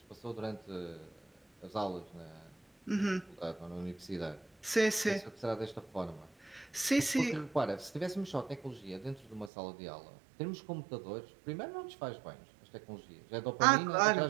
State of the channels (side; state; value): left; drops out; at 9.5 s